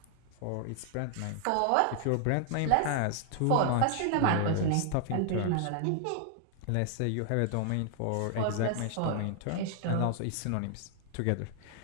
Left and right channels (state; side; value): different; both; correlation 0.00